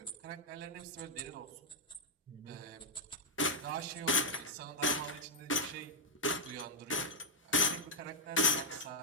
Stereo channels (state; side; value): normal; both; correlation -0.04